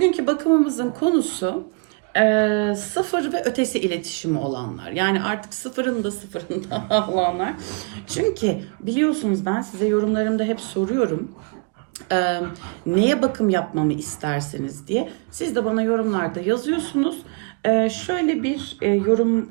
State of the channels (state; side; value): quieter; left; 36.0 dB